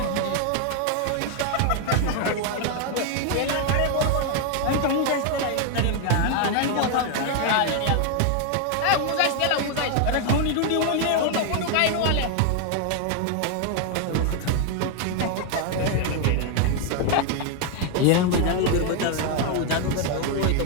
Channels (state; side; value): different; both; correlation 0.01